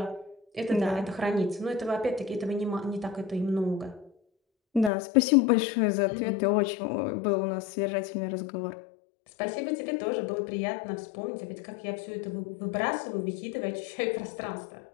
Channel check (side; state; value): right; drops out; at 4.9 s